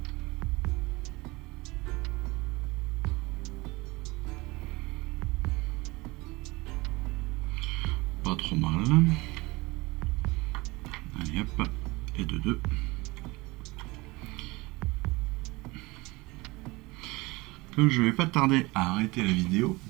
Pas trop mal. Allez hop, et de 2. Comme je vais pas tarder à arrêter la vidéo,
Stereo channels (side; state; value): left; quieter; 22.9 dB